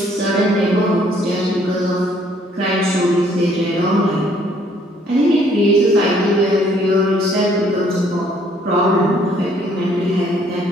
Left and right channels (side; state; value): both; normal; correlation 0.63